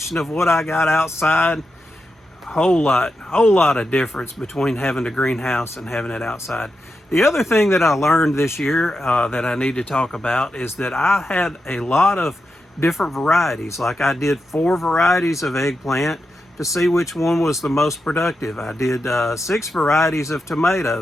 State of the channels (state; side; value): normal; both; correlation 0.87